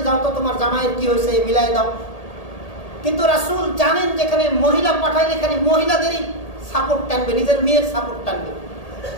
যাও তো তোমার জামাইয়ের কি হয়েছে মিলাই দাও। কিন্তু রাসূল জানেন যেখানে মহিলা পাঠাইলে এখানে মহিলাদেরই সাপোর্ট টানবে, নিজের মেয়ের সাপোর্ট টানবে।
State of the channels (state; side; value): late; right; 1.8 ms